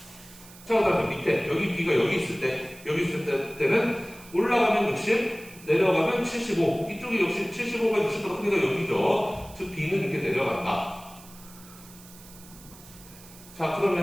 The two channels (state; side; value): noise; right; hiss, 20 dB below the sound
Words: 자, 그 다음에 밑에, 여기 B가 여기 있을 때는 올라가면 60, 내려가면 75. 이쪽이 역시 75가 60보다 크니까 여기죠. 즉, B는 이렇게 내려간다. 자,